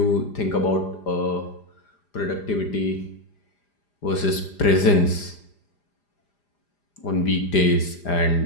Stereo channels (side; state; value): right; late; 5.0 ms